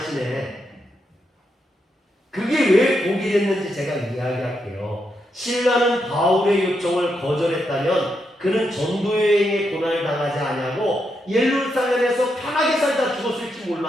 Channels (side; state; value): both; normal; correlation 0.82